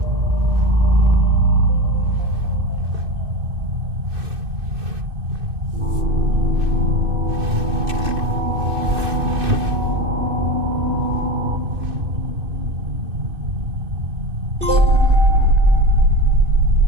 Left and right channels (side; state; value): left; late; 2.6 ms